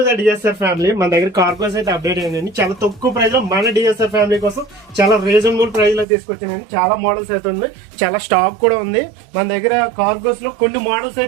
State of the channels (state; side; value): drops out; left; at 6.1 s